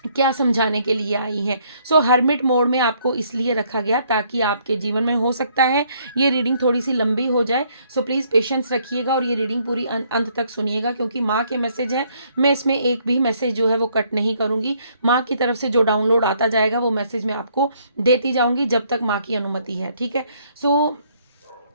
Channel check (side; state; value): both; inverted; correlation -0.67